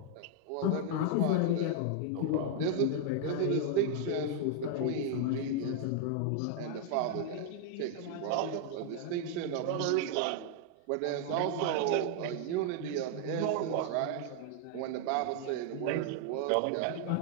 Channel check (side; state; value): both; different; correlation 0.00